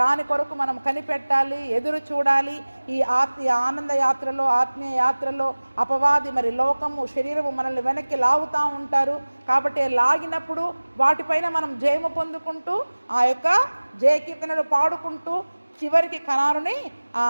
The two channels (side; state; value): both; inverted; correlation -1.00